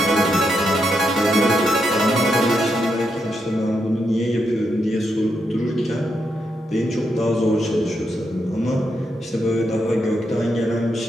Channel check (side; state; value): both; normal; correlation 0.82